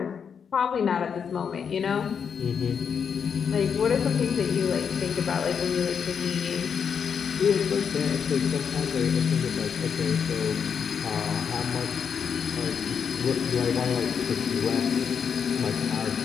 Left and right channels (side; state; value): right; quieter; 6.9 dB